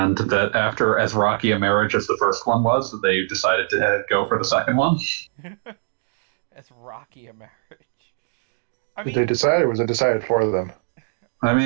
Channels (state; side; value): silent; left; 64 dB below the other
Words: that after as rocky a marriage as the first one was, they decided to go for the second one. As rocky a marriage. Did they decide, or was it decided for them? I